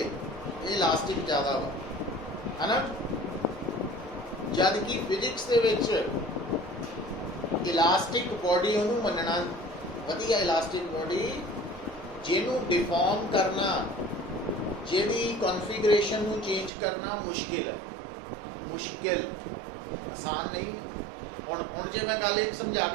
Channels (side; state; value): left; drops out; at 16.7 s